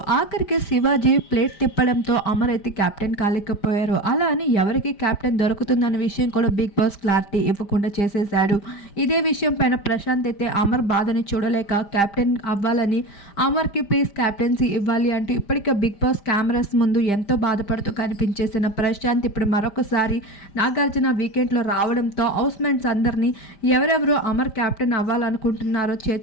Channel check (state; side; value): late; right; 5.0 ms